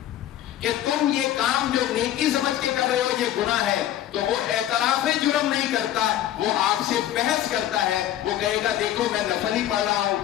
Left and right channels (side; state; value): right; quieter; 12.3 dB